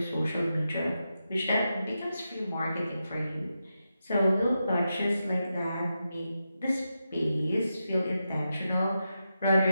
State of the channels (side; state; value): both; inverted; correlation -0.88